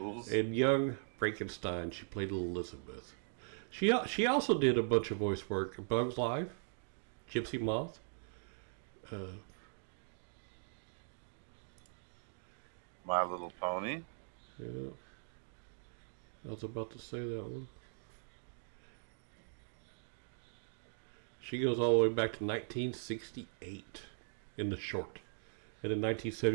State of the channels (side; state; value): left; silent; digital silence